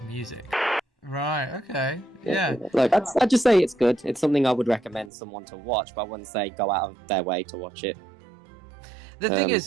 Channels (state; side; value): drops out; left; at 5.1 s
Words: music. Right, okay. Yeah. Look, I'd just say it's good. It's something I would recommend someone to watch, but I wouldn't say go out of their way to watch it. The thing